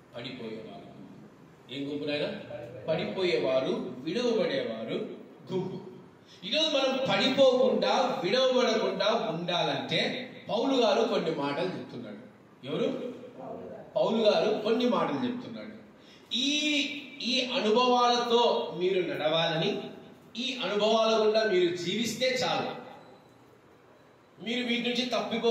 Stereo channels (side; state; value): both; identical; correlation 1.00